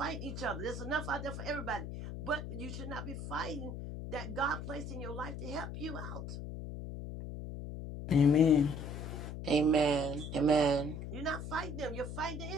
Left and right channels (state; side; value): noise; left; hum, 7 dB below the sound